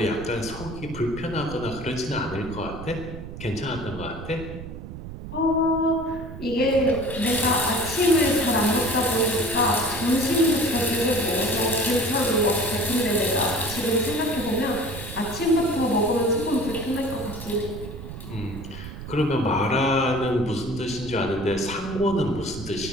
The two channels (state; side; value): noise; right; rumble, 11 dB below the sound